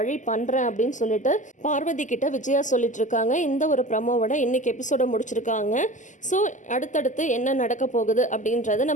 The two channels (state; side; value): late; right; 0.37 ms